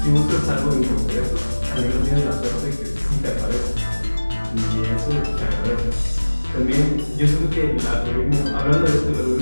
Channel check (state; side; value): inverted; both; correlation -1.00